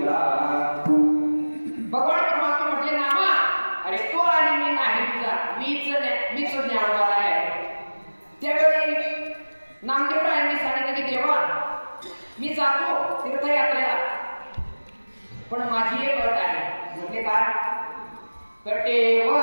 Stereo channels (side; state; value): both; inverted; correlation -1.00